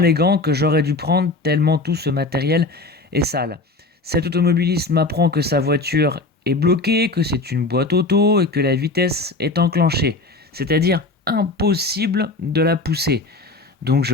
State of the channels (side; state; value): right; quieter; 3.4 dB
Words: gants que j'aurais dû prendre tellement tout ce matériel est sale. Cet automobiliste m'apprend que sa voiture est bloquée, que c'est une boîte auto et que la vitesse est enclenchée. C'est-à-dire impossible de la pousser. Donc